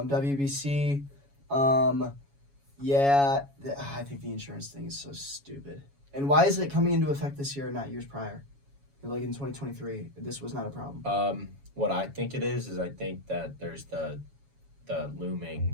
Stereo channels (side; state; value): left; late; 7.2 ms